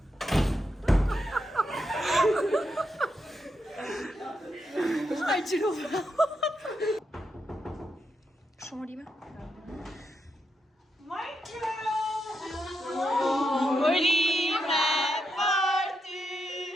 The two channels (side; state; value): both; normal; correlation 0.83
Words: Ai gjiru. Shumë rime.